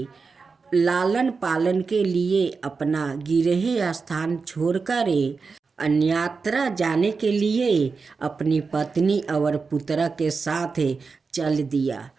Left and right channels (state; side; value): quieter; left; 4.7 dB